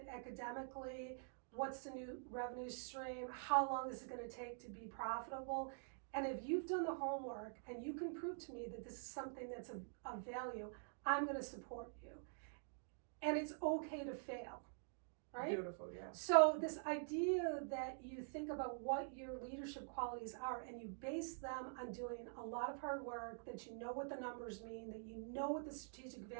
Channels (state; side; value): silent; left; digital silence